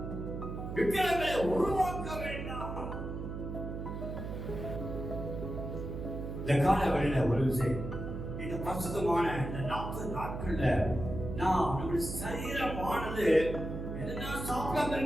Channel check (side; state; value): right; noise; hum, 6 dB below the sound